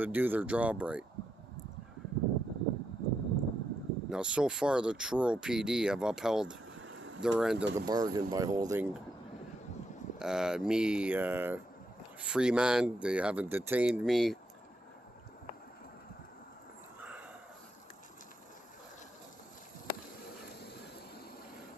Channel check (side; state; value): both; normal; correlation 0.81